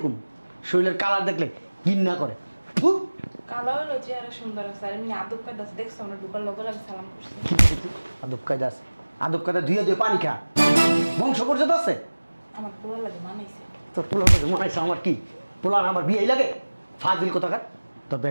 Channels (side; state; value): both; inverted; correlation -1.00